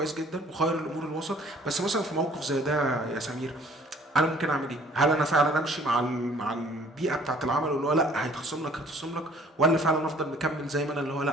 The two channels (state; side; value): normal; both; correlation 0.55